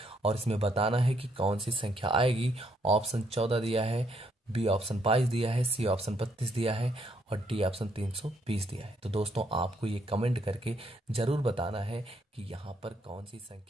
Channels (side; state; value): both; normal; correlation 0.72